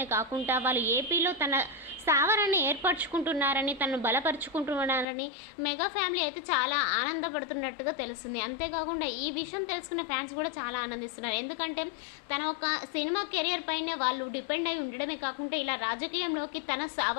కాకుండా వాళ్ళు ఏపీలో తన స్థావరాన్ని ఏర్పరచుకుంటున్నారని, తను బలపరుచుకుంటున్నారని మెగా ఫ్యామిలీ అయితే చాలా ఆనందపడుతున్నట్టుగా తెలుస్తుంది. అంతేకాకుండా ఈ విషయం తెలుసుకున్న ఫ్యాన్స్ కూడా చాలా ఆనందిస్తున్నారు. ఎందుకంటే తన ఒక సినిమా కెరియర్ పైన వాళ్ళు డిపెండ్ అయి ఉండడమే కాకుండా ఇలా రాజకీయంలోకి తన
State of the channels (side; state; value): right; drops out; at 5.1 s